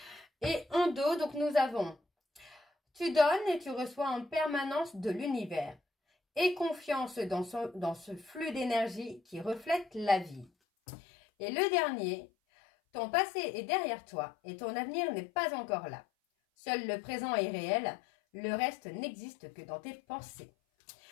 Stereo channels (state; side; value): drops out; right; at 10.5 s